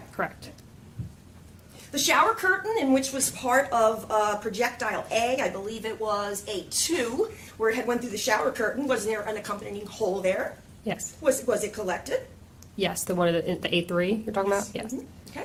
Correct. The shower curtain, in which was part of projectile A, I believe it was A2, where it had went through the shower curtain. Was there an accompanying hole there? Yes. Was it collected? Yes, the one of the A3 you're talking about? Yes.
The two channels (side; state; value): both; identical; correlation 1.00